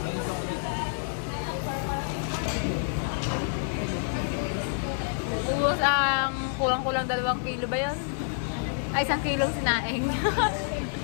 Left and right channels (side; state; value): right; silent; digital silence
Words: Ubus ang kulang-kulang 2 kilo ba yun? Ay, 1 kilong sinaing.